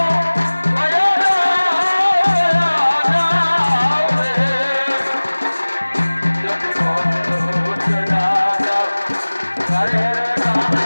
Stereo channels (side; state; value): both; inverted; correlation -1.00